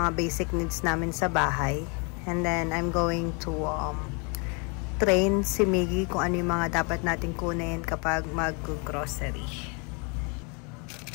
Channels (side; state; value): right; quieter; 33.9 dB